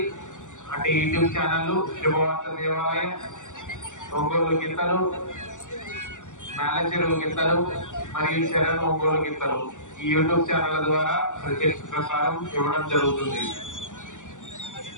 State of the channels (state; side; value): late; right; 0.86 ms